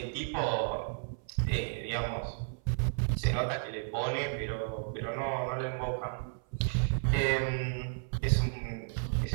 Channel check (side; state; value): left; silent; 56 dB below the other